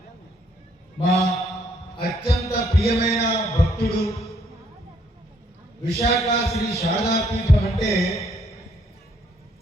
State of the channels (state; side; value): normal; both; correlation 0.69